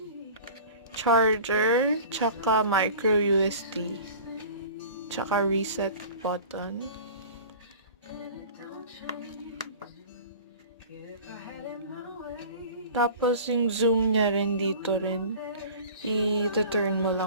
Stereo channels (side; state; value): both; inverted; correlation -0.41